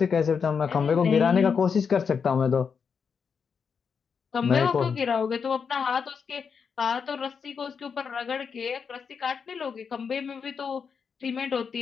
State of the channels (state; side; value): quieter; right; 6.2 dB